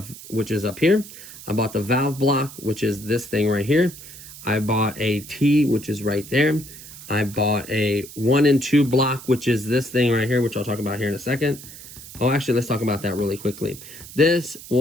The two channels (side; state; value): right; noise; hiss, 15 dB below the sound